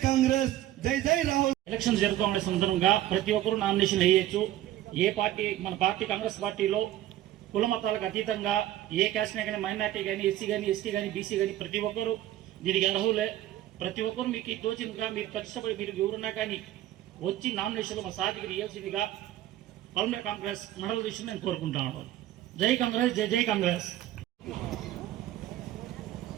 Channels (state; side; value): quieter; left; 13.6 dB